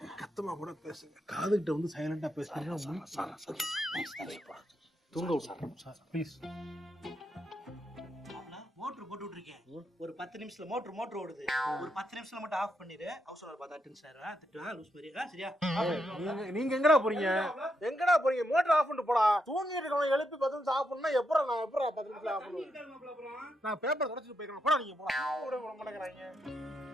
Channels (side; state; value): both; normal; correlation 0.81